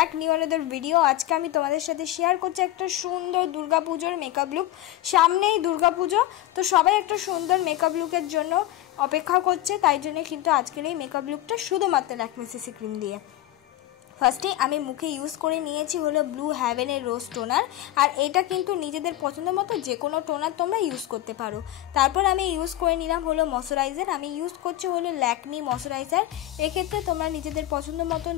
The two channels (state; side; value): quieter; right; 14.4 dB